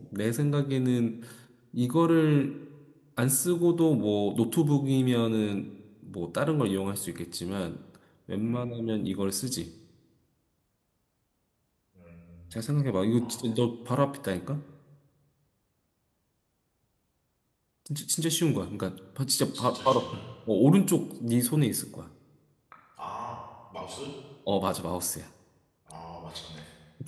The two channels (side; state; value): both; identical; correlation 1.00